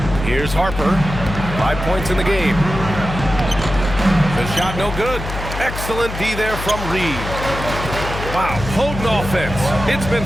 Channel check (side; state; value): left; noise; hum, 7 dB below the sound